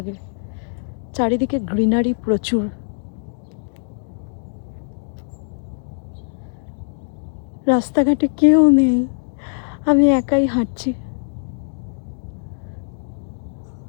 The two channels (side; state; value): right; silent; digital silence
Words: চারিদিকে গ্রিনারি প্রচুর। রাস্তাঘাটে কেউ নেই, আমি একাই হাঁটছি।